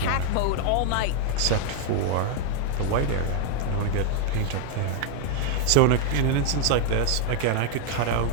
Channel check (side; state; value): both; different; correlation 0.00